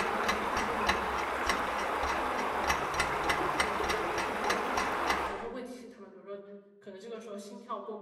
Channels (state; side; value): identical; both; correlation 1.00